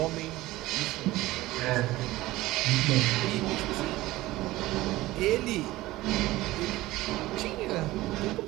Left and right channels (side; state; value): left; quieter; 17.8 dB